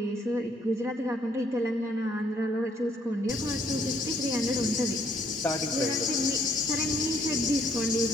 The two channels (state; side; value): normal; both; correlation 0.66